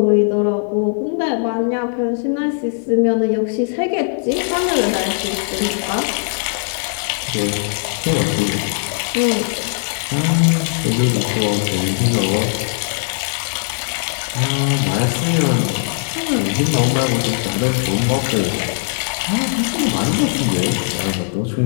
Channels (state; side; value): silent; right; 67 dB below the other